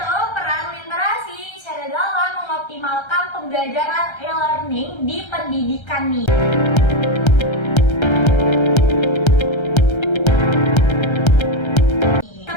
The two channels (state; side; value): late; right; 1.3 ms